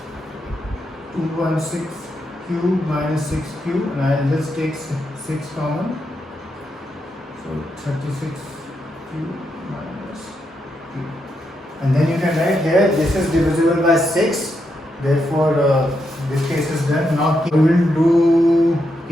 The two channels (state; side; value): normal; both; correlation 0.82